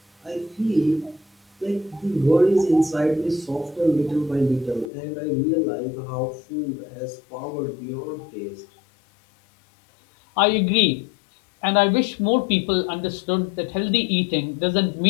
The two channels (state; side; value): drops out; right; at 4.9 s